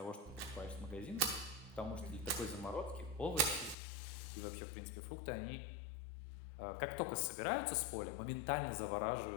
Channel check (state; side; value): drops out; right; at 3.8 s